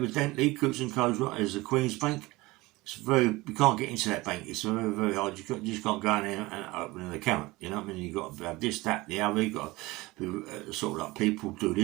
Coots & Co is the Queen's Bank. It's you can't get into that bank. It's very hard. You just can't go in there and open an account. You know what I mean? You've got to have this, that, the other. You've got to be, sort of like people do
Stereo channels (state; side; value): quieter; left; 21.1 dB